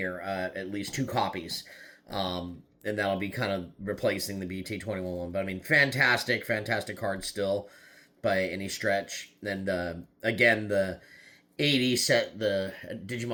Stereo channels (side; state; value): both; identical; correlation 1.00